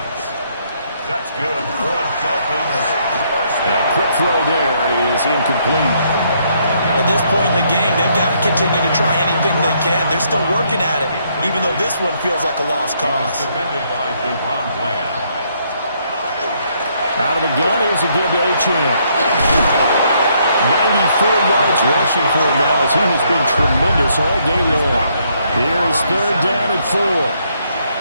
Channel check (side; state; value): both; inverted; correlation -0.71